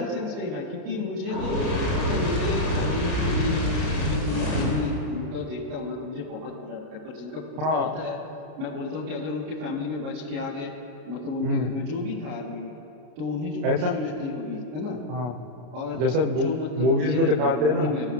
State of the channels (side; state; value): left; late; 33 ms